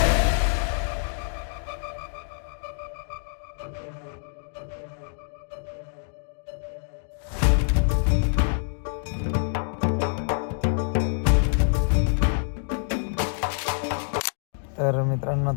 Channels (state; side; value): silent; right; digital silence